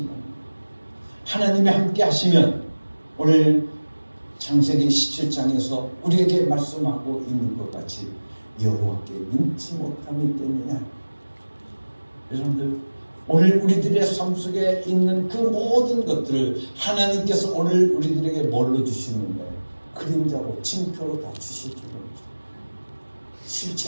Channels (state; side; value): inverted; both; correlation -1.00